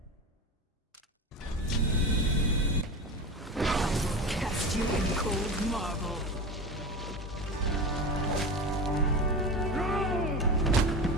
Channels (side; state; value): both; normal; correlation 0.26